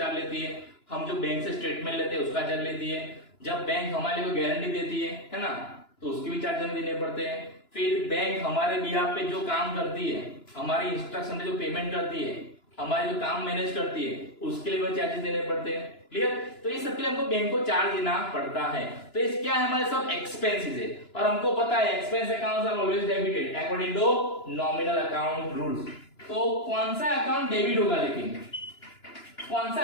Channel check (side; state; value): right; late; 2.9 ms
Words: लेती है, हम जो बैंक से स्टेटमेंट लेते हैं उसका चार्ज लेती है, जब बैंक हमारे को गारंटी देती है ना, तो उसके भी चार्ज हमें देने पड़ते हैं। फिर बैंक हमारे बिहाफ पे जो काम करती है, हमारी इंस्ट्रक्शन पे जो पेमेंट करती है, हमारे जो काम मैनेज करती है, उसके लिए भी चार्जेस देने पड़ते हैं। क्लियर? तो ये सबके लिए हमको बैंक को चार्ज देना पड़ता है। तो इस क्या है? हमारे सब एक्सपेंसेस है, और हमको पता है expense accounts are always debited according to nominal account rules. तो कौन सा अकाउंट डेबिट होगा? लेकिन कौन सा